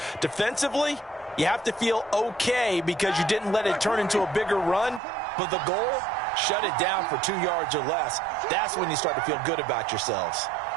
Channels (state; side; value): drops out; left; at 5.0 s